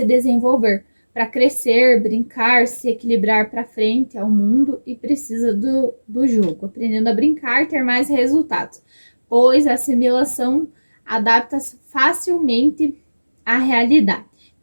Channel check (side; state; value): both; inverted; correlation -1.00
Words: desenvolver, para crescer, brincar, se equilibrar para frente ao mundo e precisa do jogo, aprendendo a brincar, ter mais resultados, pois a assimilação adapta-se facilmente à realidade.